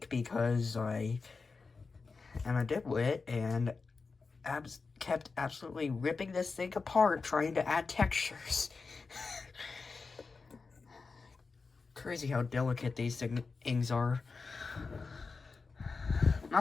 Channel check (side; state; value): right; quieter; 4.4 dB